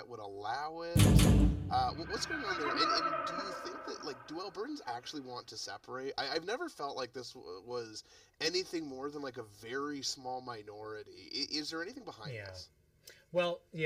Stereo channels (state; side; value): identical; both; correlation 1.00